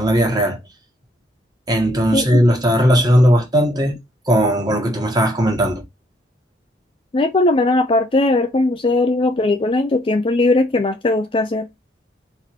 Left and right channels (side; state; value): both; normal; correlation 0.68